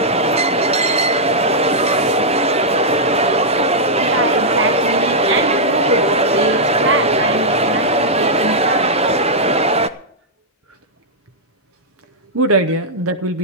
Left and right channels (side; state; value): both; normal; correlation -0.08